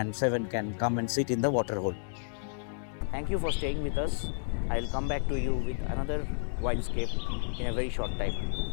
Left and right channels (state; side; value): silent; right; digital silence